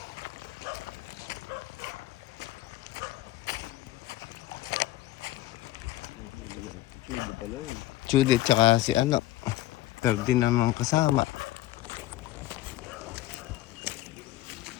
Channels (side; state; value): right; quieter; 15.8 dB